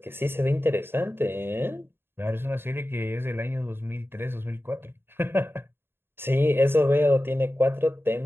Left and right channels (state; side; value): late; left; 0.11 ms